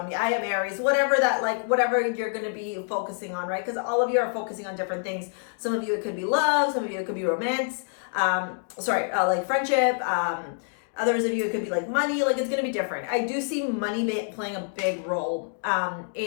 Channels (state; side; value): silent; right; digital silence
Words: me. I am Aries, whatever you're going to be focusing on, right? Because all of you are focusing on different things. Some of you, it could be love. Some of you, it could be romance. Like friendship. Others of you, it could be like money. Like, it's going to be different. I do see money playing a big role